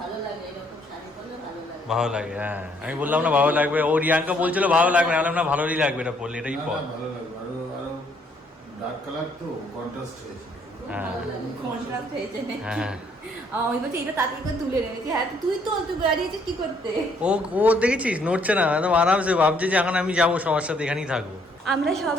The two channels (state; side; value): normal; both; correlation 0.67